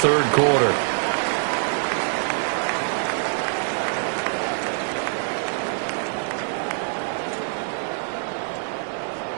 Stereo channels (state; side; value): silent; left; digital silence